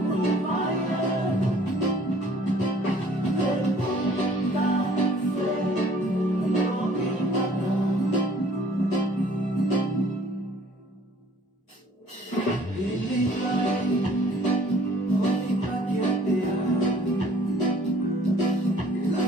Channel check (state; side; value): normal; both; correlation 0.56